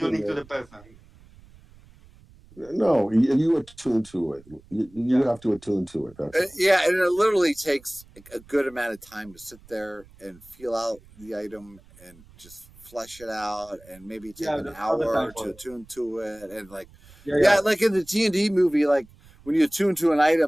attuning to it, the person. No, you attune to it. You Yeah. have to attune to it. That's all. Yeah, and it literally takes a good amount of time to sit there and feel out the item and just flesh it out, and maybe take Yeah, an there's all the hour time to for it. attune to it, and like, Yeah, yeah, yeah. like in the D&D movie, like when you attune to an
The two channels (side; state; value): right; noise; rumble, 25 dB below the sound